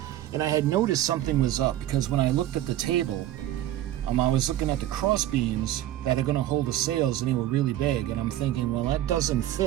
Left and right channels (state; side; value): quieter; left; 13.3 dB